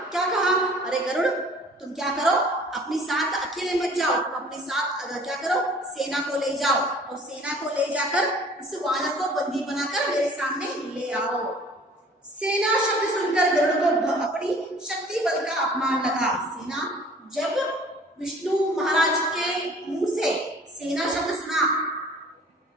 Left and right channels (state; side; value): normal; both; correlation 0.51